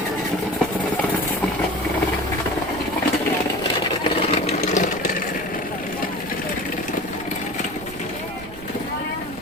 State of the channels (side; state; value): right; noise; rumble, 16 dB below the sound